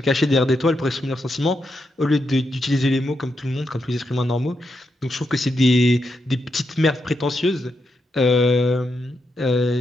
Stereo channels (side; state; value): both; normal; correlation 0.83